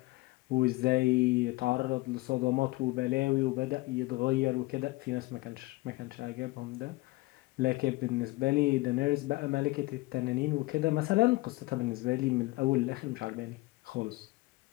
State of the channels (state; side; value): quieter; right; 21.1 dB